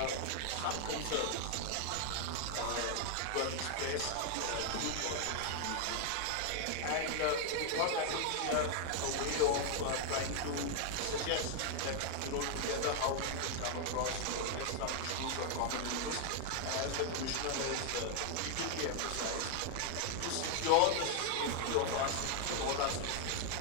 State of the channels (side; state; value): both; different; correlation 0.00